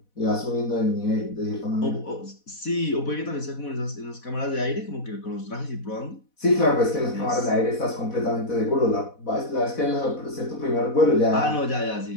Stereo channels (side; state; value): right; late; 4.1 ms